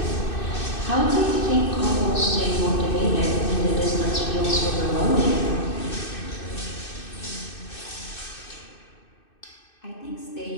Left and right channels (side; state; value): right; late; 2.6 ms